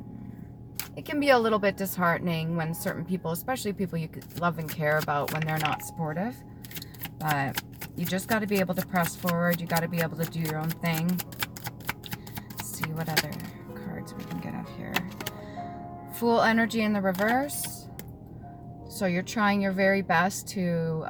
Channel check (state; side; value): identical; both; correlation 1.00